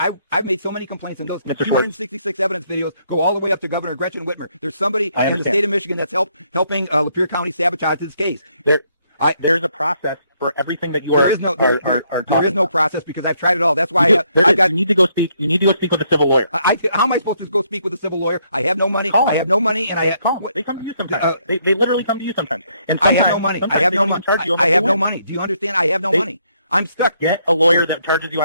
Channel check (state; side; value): inverted; both; correlation -0.72